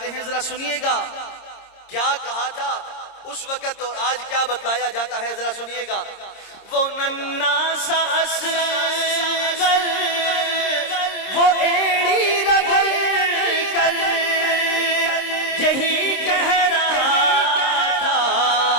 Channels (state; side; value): late; right; 26 ms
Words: ہیں، ذرا سنیے گا کیا کہا تھا اس وقت اور آج کیا بتلایا جاتا ہے، ذرا سنیے گا۔ وہ ننھا سا اصغر وہ ایڑی رگڑ کر یہی کہہ رہا تھا